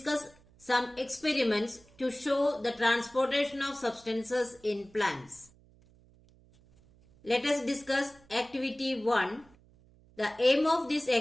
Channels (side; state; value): right; noise; hum, 28 dB below the sound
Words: some experiments to show the transportation of substances in plants. Let us discuss activity 1. The aim of this